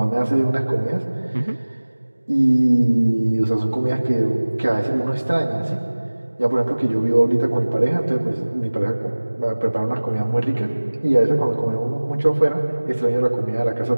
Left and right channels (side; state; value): both; inverted; correlation -1.00